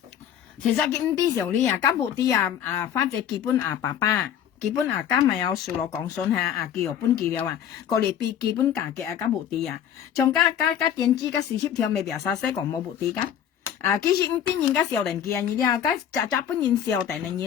其實佢啲時候呢啊，根本啲花仔基本爸爸，基本家咪有數落講信下叫本記了啊，個嚟比基本價嘅根本啲啊，仲加電子加40條未必有啥使講冇目的噶。其實啲人家小人嘅你啲家本人小人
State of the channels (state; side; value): quieter; right; 9.5 dB